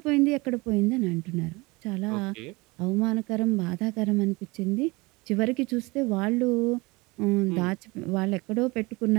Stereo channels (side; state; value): left; quieter; 24.3 dB